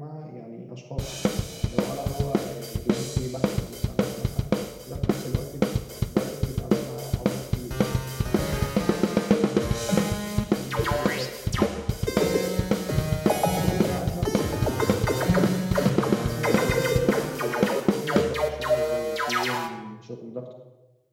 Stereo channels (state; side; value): identical; both; correlation 1.00